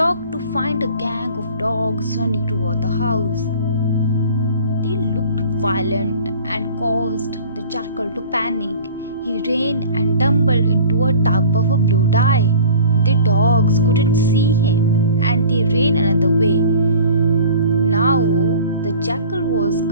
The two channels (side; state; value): both; inverted; correlation -0.45